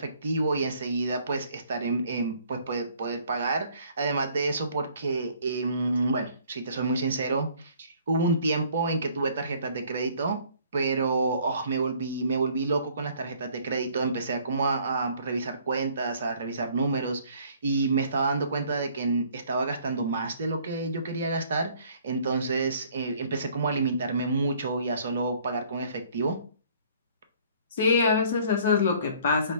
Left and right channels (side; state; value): both; inverted; correlation -0.58